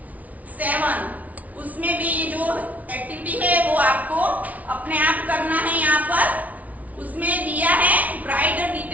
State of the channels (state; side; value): late; left; 0.071 ms